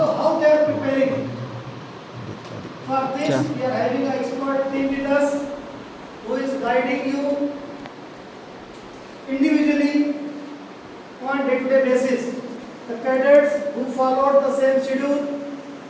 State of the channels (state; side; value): identical; both; correlation 1.00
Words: they are preparing? For this we are having an expert team with us who is guiding you individually on day-to-day basis. The cadets who followed the same schedule,